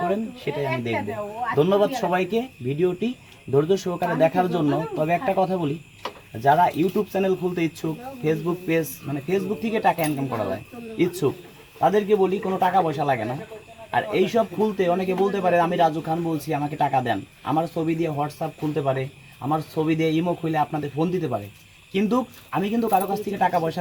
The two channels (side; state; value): both; identical; correlation 1.00